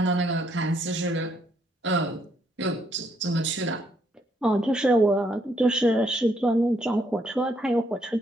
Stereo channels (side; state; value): both; normal; correlation 0.72